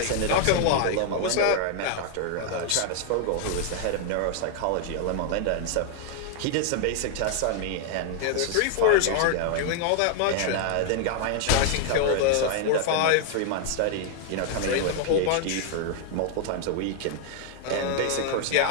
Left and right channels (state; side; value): different; both; correlation 0.00